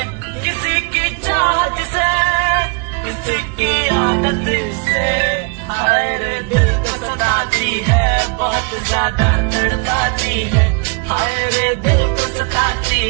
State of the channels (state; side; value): quieter; left; 33.3 dB